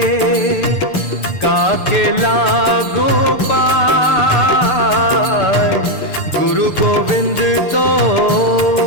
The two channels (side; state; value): right; late; 6.8 ms